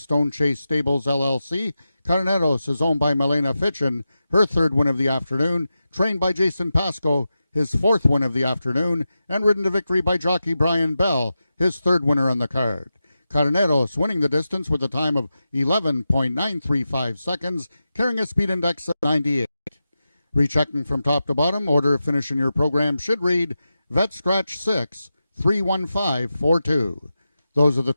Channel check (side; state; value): both; inverted; correlation -0.91